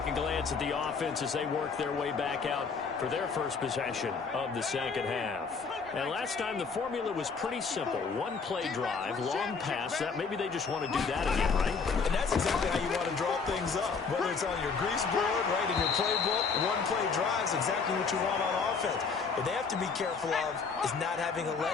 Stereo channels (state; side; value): quieter; right; 5.1 dB